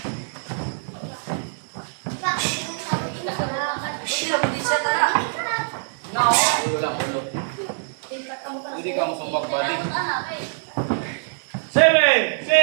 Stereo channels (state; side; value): silent; left; 63 dB below the other